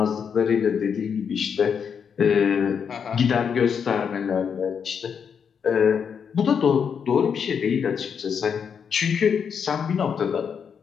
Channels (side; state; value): right; quieter; 7.0 dB